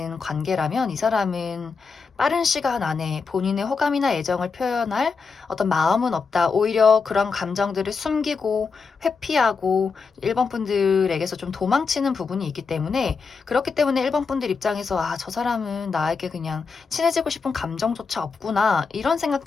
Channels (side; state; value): right; quieter; 5.0 dB